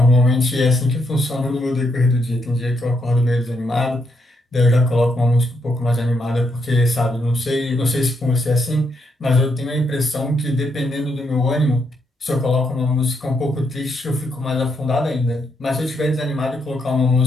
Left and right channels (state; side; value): normal; both; correlation 0.78